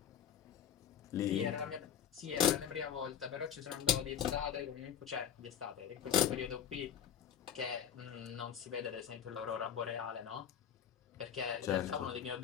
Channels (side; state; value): right; quieter; 9.0 dB